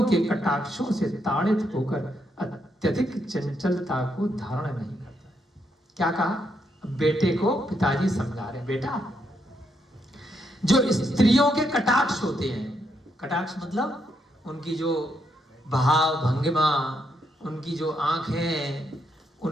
के कटाक्षों से ताड़ित होकर अत्यधिक चंचलता को धारण नहीं करता। क्या कहा? बेटे को पिताजी समझा रहे, बेटा जो स्त्रियों के कटाक्ष होते हैं, कटाक्ष मतलब उनकी जो भाव भंगिमा, उनकी जो आंखें,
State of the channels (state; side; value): normal; both; correlation 0.78